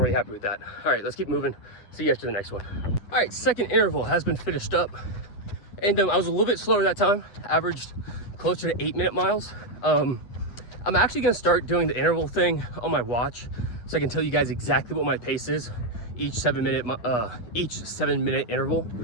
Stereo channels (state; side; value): late; right; 9.7 ms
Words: really happy with that. All right, let's keep moving. See you after the next one. All right, second interval has been finished up. And I was a little bit slower that time, averaged closer to 8-minute miles. I'm actually gonna start doing the interval thing on my watch so I can tell you guys exactly what my pace is each 7-minute interval.